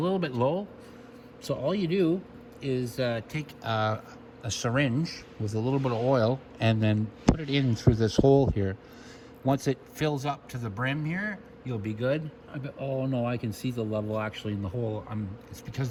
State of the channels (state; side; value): identical; both; correlation 1.00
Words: bit low, so all you do is take a syringe with a little bit of oil and then put it in through this hole here. Once it fills up to the brim here, you'll be good. Oh no, I can see the level actually in the hole. It's